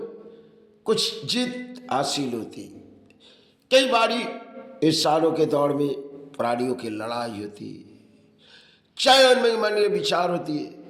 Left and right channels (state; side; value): identical; both; correlation 1.00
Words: कुछ जीत हासिल होती। कई बारी इंसानों के दौर में प्राणियों की लड़ाई होती है, चाहे उनमें मन में विचार होती है